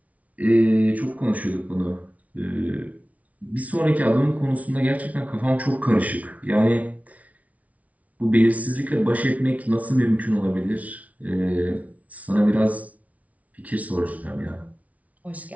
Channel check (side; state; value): left; late; 0.069 ms